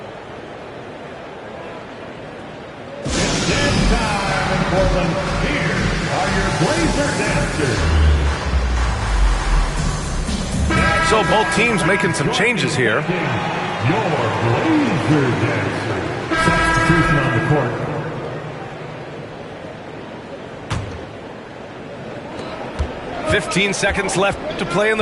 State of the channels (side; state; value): both; identical; correlation 1.00